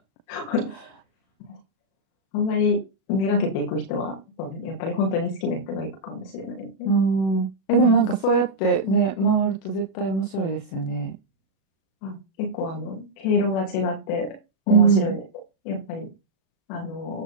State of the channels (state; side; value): late; right; 36 ms